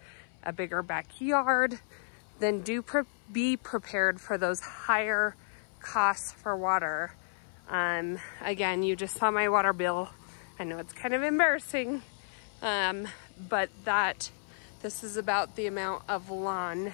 a bigger backyard, then be prepared for those higher costs for water. Again, you just saw my water bill. I know it's kind of embarrassing, but this is about the amount of lawn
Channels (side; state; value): right; silent; 56 dB below the other